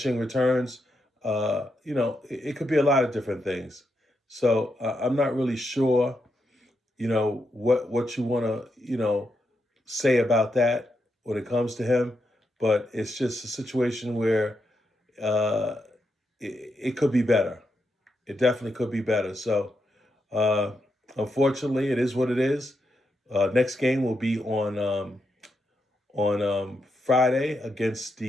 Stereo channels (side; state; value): both; normal; correlation 0.83